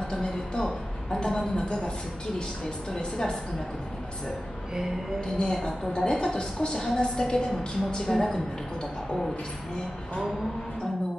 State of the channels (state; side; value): normal; both; correlation 0.95